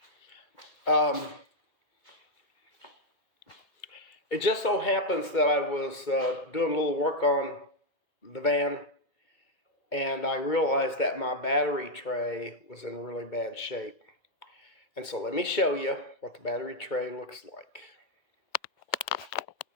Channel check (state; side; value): late; right; 2.2 ms